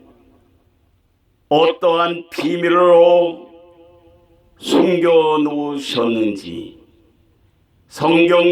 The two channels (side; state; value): both; identical; correlation 1.00